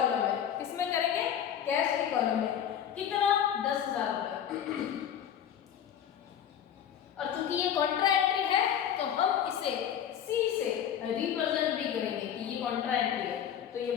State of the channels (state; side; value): quieter; right; 9.3 dB